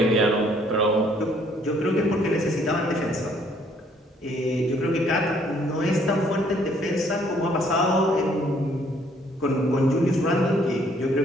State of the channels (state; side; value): normal; both; correlation 0.63